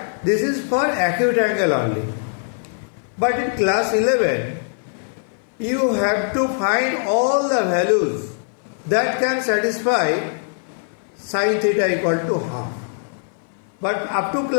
this is for acute angle only. But in class 11, you have to find all the values that can satisfy sin theta equal to half. But up to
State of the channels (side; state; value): right; silent; 58 dB below the other